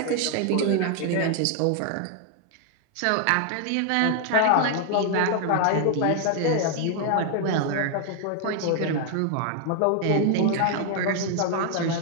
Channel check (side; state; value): both; different; correlation 0.00